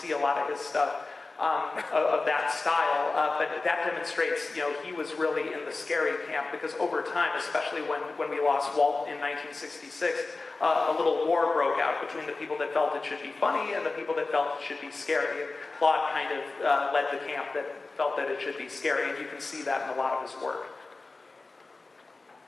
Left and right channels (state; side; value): quieter; right; 3.5 dB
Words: a lot of his stuff of that style, but that demonstrates, he was really in the scary camp because over time, especially when we lost Walt in 1966, a little war broke out between the people that felt it should be funny and the people that felt it should be scary. And Claude kind of led the camp that felt that it should be scary, and you can see that in a lot of his work.